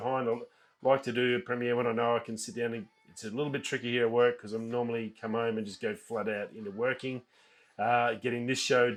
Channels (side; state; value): both; identical; correlation 1.00